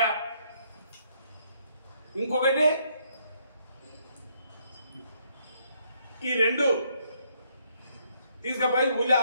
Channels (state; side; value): inverted; both; correlation -0.70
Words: ఇంకొకటి ఈ రెండు తీసుకపోయి ఊళ్ళో